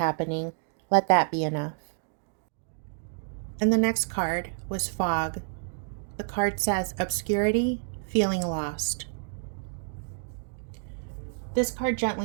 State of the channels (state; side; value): silent; left; digital silence